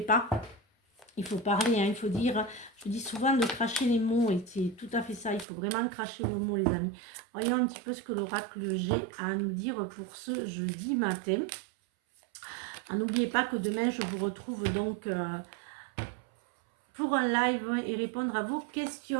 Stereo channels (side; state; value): left; drops out; at 5.5 s